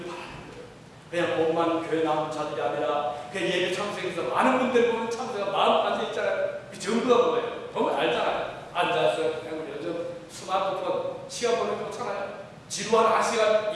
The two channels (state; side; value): identical; both; correlation 1.00